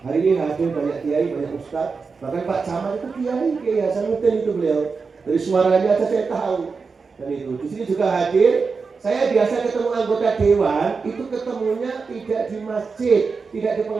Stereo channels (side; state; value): left; quieter; 4.8 dB